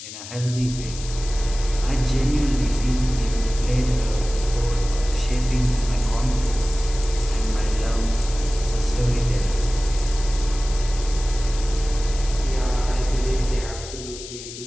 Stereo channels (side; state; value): left; noise; hiss, 12 dB below the sound